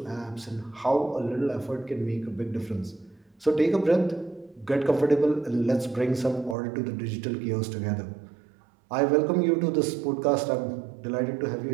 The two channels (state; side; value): drops out; left; at 6.6 s